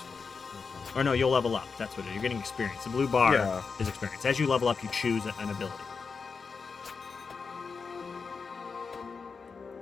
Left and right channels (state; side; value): quieter; right; 5.1 dB